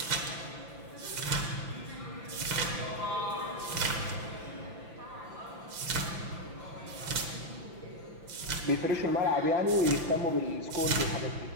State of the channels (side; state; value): left; late; 5.9 ms